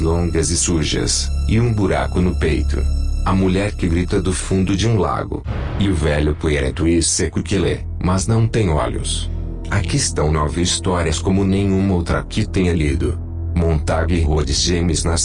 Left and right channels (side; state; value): both; identical; correlation 1.00